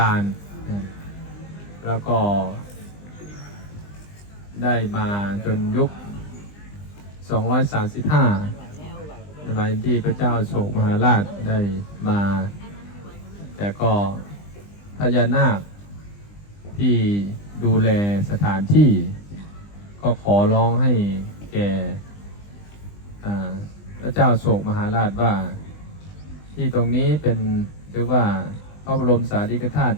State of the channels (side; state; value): right; late; 20 ms